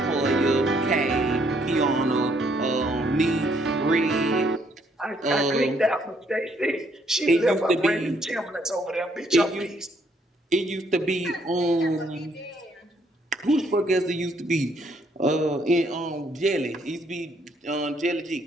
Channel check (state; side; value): normal; both; correlation 0.69